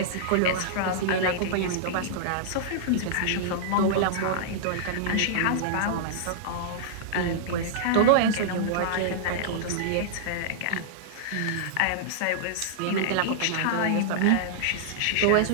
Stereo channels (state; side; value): different; both; correlation -0.02